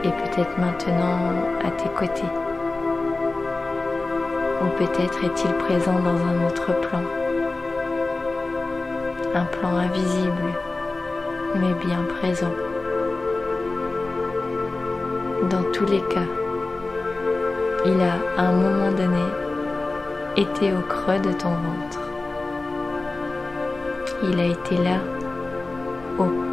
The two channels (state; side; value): quieter; right; 3.3 dB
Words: est peut-être maintenant à tes côtés. Ou peut-être est-il présent dans un autre plan. Un plan invisible, mais bien présent. Dans tous les cas, il a à un moment donné été au creux de ton ventre. Il a été là, au